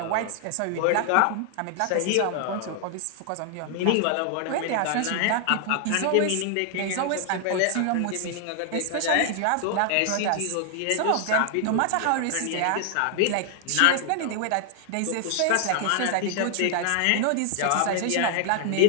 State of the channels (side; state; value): both; different; correlation 0.00